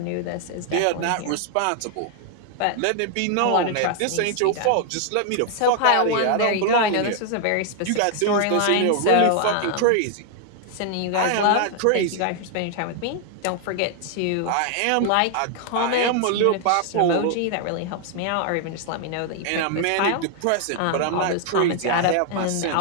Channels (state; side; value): different; both; correlation 0.00